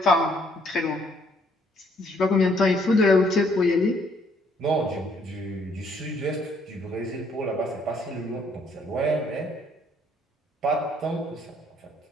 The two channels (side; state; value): both; normal; correlation 0.66